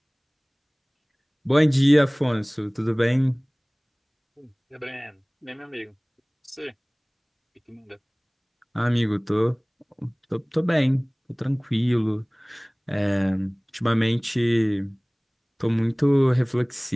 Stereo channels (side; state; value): both; identical; correlation 1.00